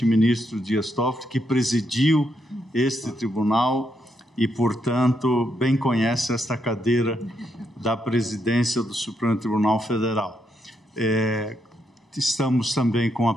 ministro Dias Toffoli, que presidiu este tribunal e, portanto, bem conhece esta cadeira da presidência do Supremo Tribunal Federal. Estamos também com a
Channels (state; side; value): normal; both; correlation 0.79